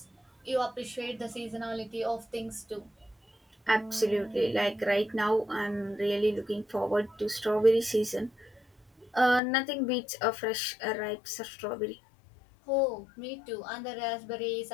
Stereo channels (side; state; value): right; drops out; at 9.4 s